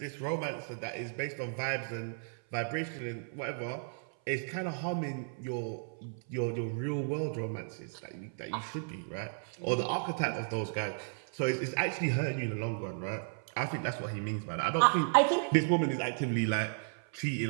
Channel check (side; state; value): left; silent; 55 dB below the other